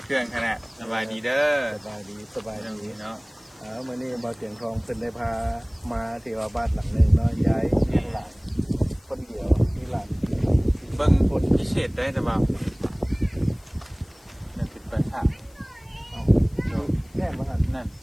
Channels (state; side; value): noise; left; hiss, 29 dB below the sound